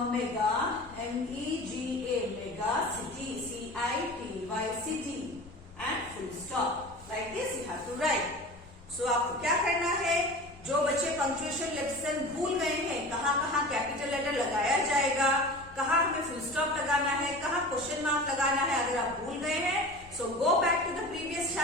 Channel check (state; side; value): noise; left; rumble, 22 dB below the sound